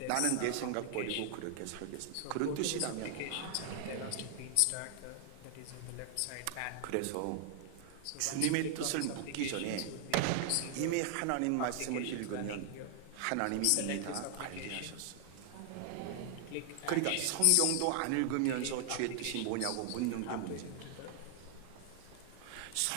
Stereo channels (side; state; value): both; different; correlation 0.00